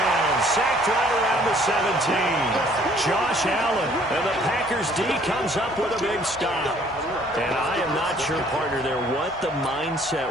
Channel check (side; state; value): both; normal; correlation 0.59